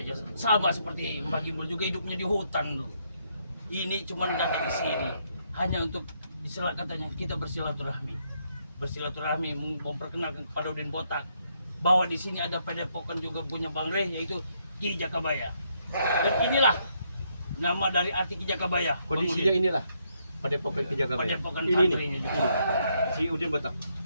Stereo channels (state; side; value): inverted; both; correlation -0.75